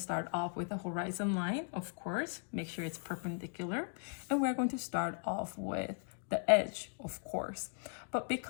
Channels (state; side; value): silent; right; 53 dB below the other